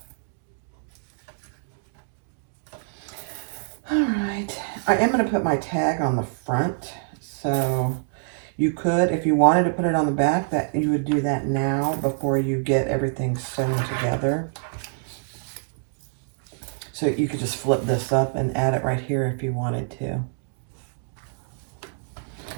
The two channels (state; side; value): silent; left; digital silence